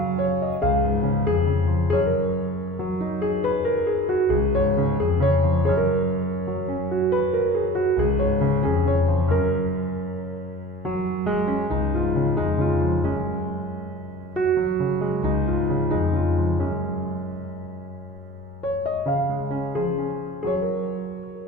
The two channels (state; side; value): normal; both; correlation 0.42